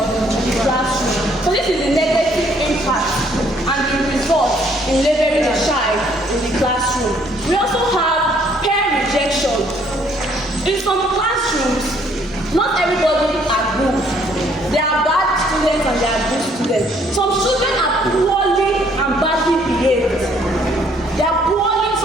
the classroom. So this is the negative impact and the result in labeling a child in the classroom. We also have peer rejection. In some classrooms, not everybody are good. There are bad students and there are good students. Some children are poorly and badly behaved.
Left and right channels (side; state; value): both; normal; correlation 0.65